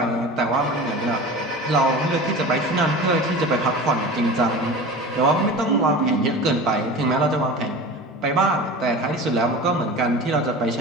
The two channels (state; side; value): normal; both; correlation 0.34